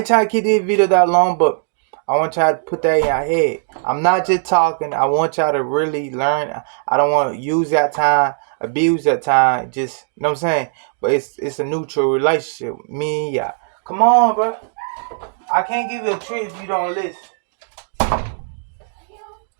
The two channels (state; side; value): silent; left; digital silence